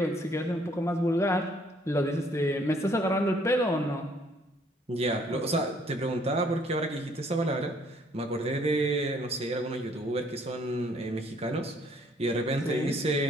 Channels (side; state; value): both; normal; correlation 0.63